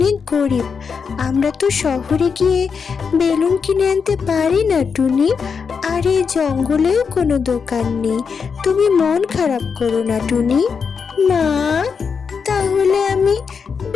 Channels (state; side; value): quieter; right; 5.9 dB